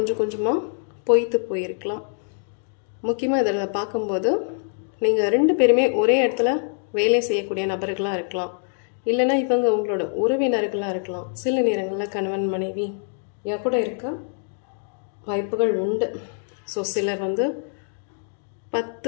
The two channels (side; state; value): right; silent; digital silence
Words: கொஞ்சமாக பொய்த்து போயிருக்கலாம். முக்கியமாக இதில் பார்க்கும்போது நீங்கள் ரெண்டு பேருமே ஒரே இடத்துல வேலை செய்யக்கூடிய நபர்களாக இருக்கலாம். இல்லைன்னா இவங்க உங்களோட உறவினர்களாக இருக்கலாம். சில நேரங்களில் கணவன் மனைவி கூட இருக்க வாய்ப்புகள் உண்டு. ஸோ சிலர்